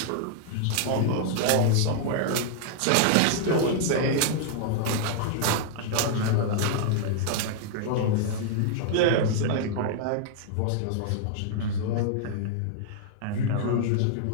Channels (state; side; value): different; both; correlation -0.01